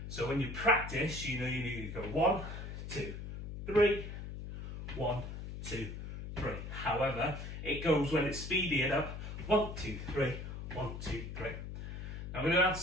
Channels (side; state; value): left; noise; hum, 7 dB below the sound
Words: So when you practice, you know you need to go 1, 2, 3, 1, 2, 3. However, it goes when it's speeding up 1, 2, 3, 1, 2, 3. Now we're going to add